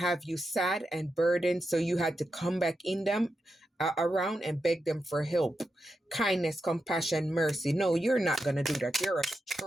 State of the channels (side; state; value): both; normal; correlation 0.88